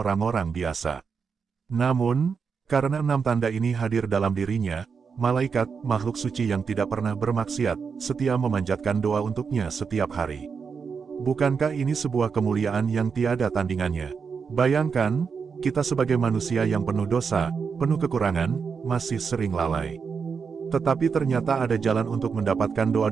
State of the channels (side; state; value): left; quieter; 5.8 dB